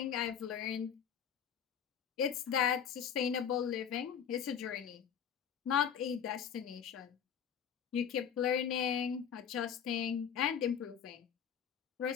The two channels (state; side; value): quieter; right; 8.1 dB